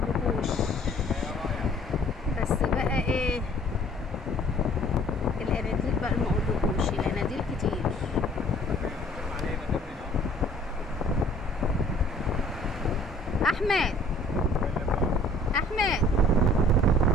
بس بقى ايه الاناديل بقى مقولكوش، الاناديل كتير. احمد احمد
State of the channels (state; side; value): normal; both; correlation 0.54